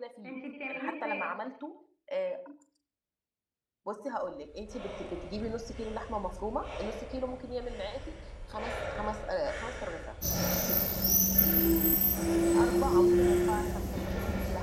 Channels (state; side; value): identical; both; correlation 1.00